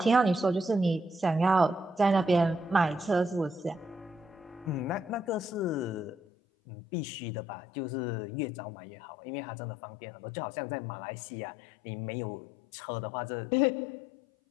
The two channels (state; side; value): drops out; right; at 6.2 s